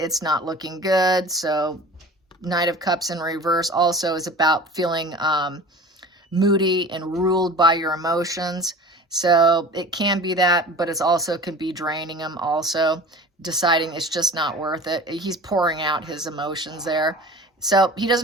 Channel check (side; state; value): both; normal; correlation 0.40